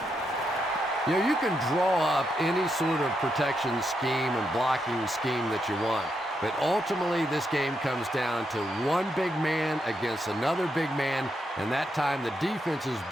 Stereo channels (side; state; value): both; normal; correlation 0.82